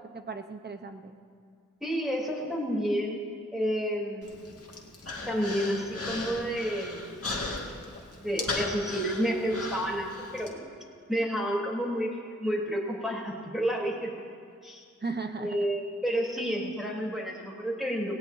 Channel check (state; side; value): normal; both; correlation 0.68